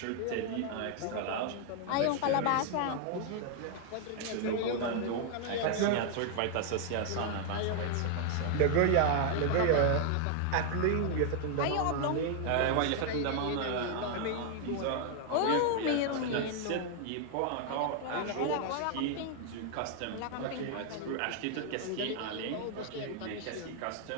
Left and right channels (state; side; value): different; both; correlation 0.00